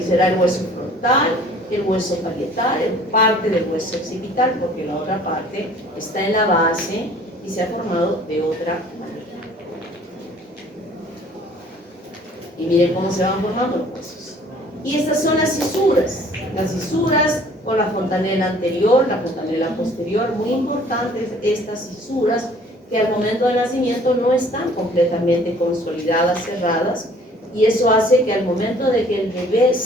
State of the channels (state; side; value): normal; both; correlation 0.54